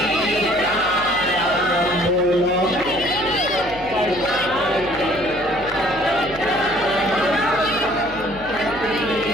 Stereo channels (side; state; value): left; noise; hum, 17 dB below the sound